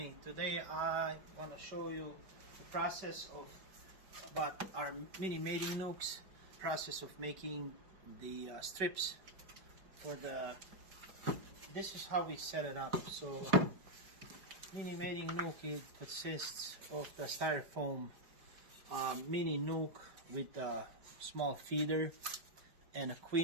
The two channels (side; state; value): left; late; 5.2 ms